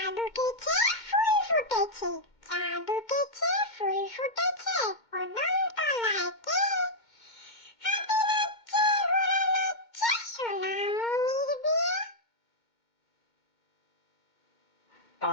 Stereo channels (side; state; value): right; late; 2.2 ms